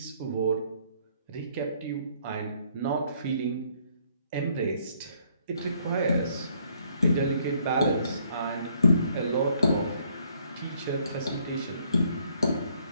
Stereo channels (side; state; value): both; inverted; correlation -0.66